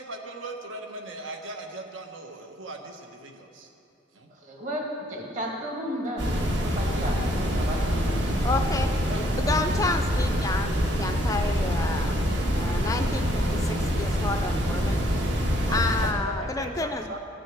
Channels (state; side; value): normal; both; correlation 0.67